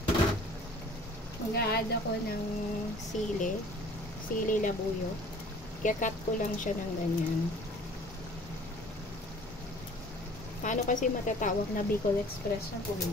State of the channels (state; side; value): normal; both; correlation 0.50